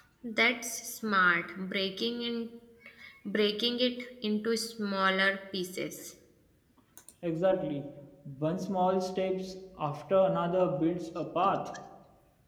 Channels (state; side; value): identical; both; correlation 1.00